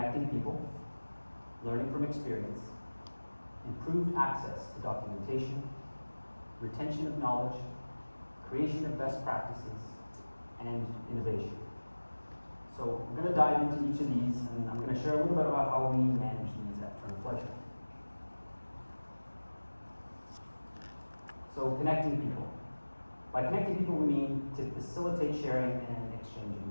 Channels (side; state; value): both; inverted; correlation -1.00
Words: people, learning from experience, improved access to documentation, retention of knowledge, creation of best practices, and innovation. So I'm going to dive into each of these, and I'm going to share a little bit about how we manage these at Turner Fleischer. So connecting people. By connecting people, we mean to facilitate sharing and exchanging